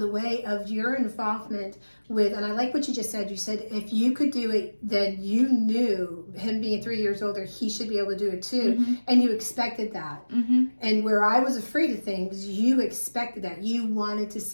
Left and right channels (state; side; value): inverted; both; correlation -1.00